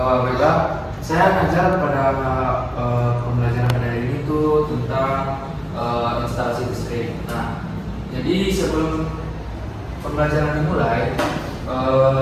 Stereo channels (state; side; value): identical; both; correlation 1.00